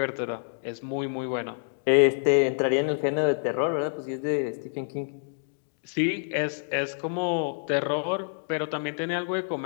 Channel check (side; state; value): right; silent; digital silence